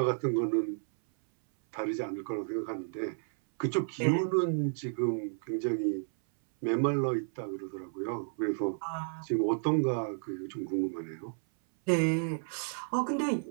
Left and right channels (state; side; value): silent; left; 56 dB below the other